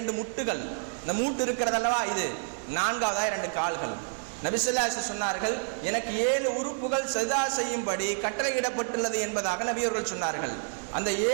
முட்டுகள், இந்த மூட்டு இருக்கிறதல்லவா இது. நான்காவதாக 2 கால்கள். நபி ஸல்லல்லாஹு அலைஹி வஸல்லம் சொன்னார்கள், எனக்கு 7 உறுப்புகள் சஜ்தா செய்யும்படி கட்டளையிடப்பட்டுள்ளது என்பதாக நபி அவர்கள் சொன்னார்கள். அந்த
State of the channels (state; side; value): silent; left; 59 dB below the other